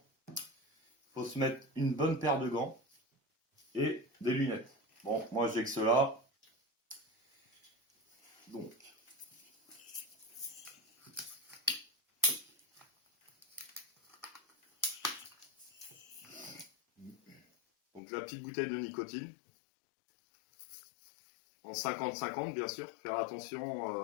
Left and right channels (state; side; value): drops out; right; at 18.0 s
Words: il faut se mettre une bonne paire de gants et des lunettes. Bon, moi j'ai que cela. Donc la petite bouteille de nicotine. En 50-50 bien sûr, faire attention